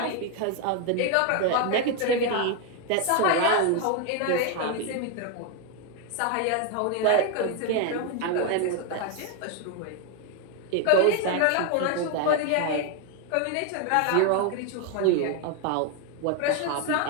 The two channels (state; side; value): different; both; correlation 0.01